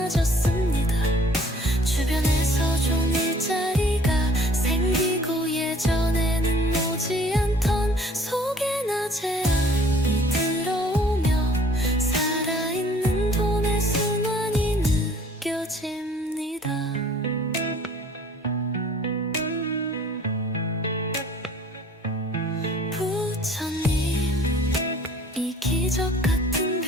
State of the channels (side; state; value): both; normal; correlation 0.54